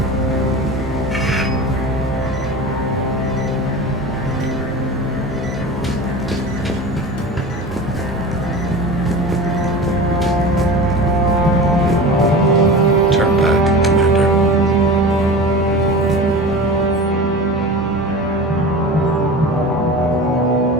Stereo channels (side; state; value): both; normal; correlation 0.32